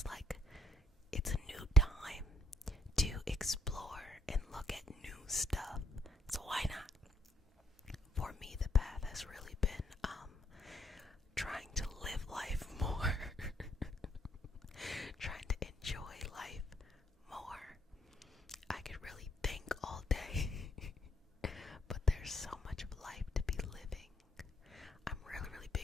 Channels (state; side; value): normal; both; correlation 0.71